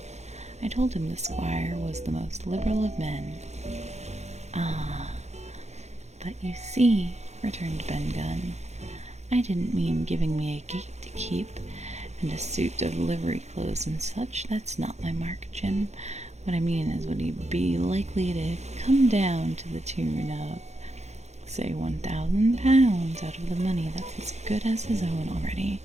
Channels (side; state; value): left; late; 0.32 ms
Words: I told him the squire was the most liberal of men. "Ah, but you see," returned Ben Gunn, "I didn't mean giving me a gate to keep, and a suit of livery clothes and such. That's not my mark, Jim. What I mean is, would he be likely to come down to the tune of, say, £1,000 out of the money that's as good as his own already?"